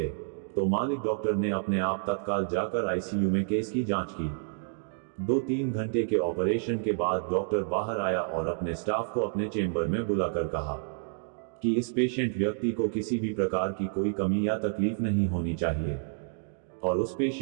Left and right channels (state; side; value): silent; left; digital silence